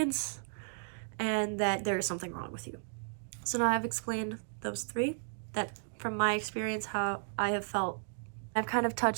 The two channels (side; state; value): left; silent; digital silence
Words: and that there is something wrong with you. So now I've explained those three, that from my experience, how I have felt. I've kind of